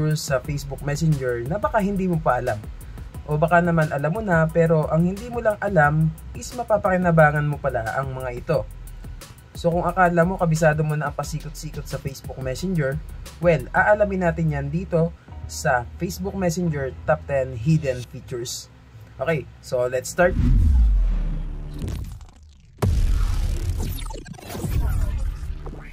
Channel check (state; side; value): identical; both; correlation 1.00